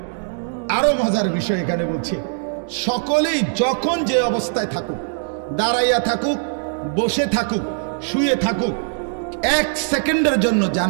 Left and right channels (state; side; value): silent; left; digital silence